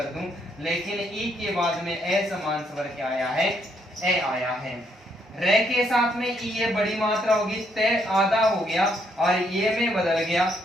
दूं, लेकिन ई के बाद में ए समान स्वर क्या आया है, ए आया है। रे के साथ में ई ये बड़ी मात्रा होगी, तय आधा हो गया और ये में बदल गया,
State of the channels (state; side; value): normal; both; correlation 0.73